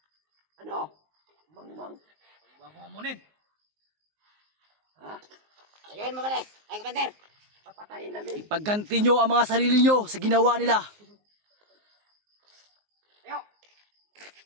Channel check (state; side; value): late; left; 19 ms